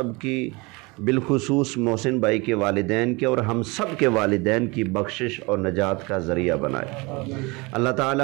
کی، بالخصوص محسن بھائی کے والدین کے اور ہم سب کے والدین کی بخشش اور نجات کا ذریعہ بنائے۔ اللہ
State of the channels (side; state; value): left; quieter; 26.1 dB